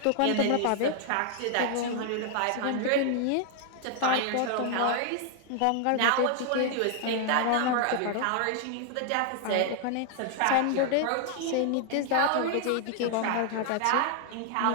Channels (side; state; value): both; different; correlation 0.00